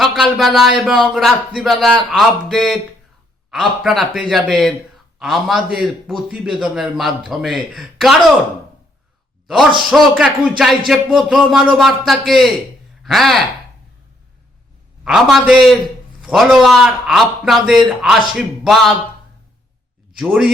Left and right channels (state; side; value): normal; both; correlation 0.71